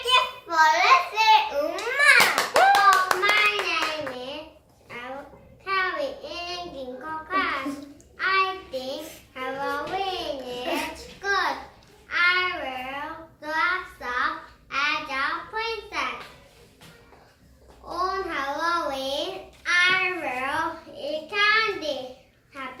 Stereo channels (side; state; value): both; identical; correlation 1.00